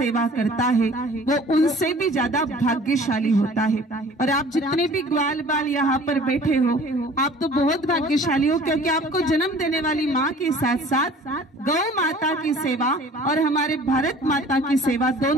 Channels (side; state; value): both; normal; correlation 0.49